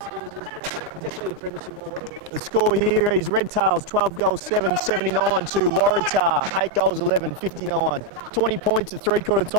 definitely the premiership win. the score here is Redtails 12 goals 7, 79 to Waratah 8 goals 11, 59. 20 points at 3/4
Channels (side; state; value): right; late; 9.8 ms